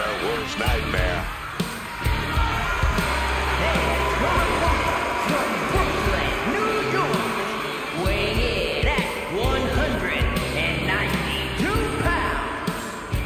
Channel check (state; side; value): identical; both; correlation 1.00